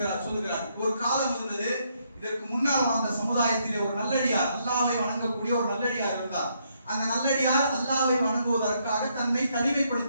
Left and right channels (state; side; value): inverted; both; correlation -0.74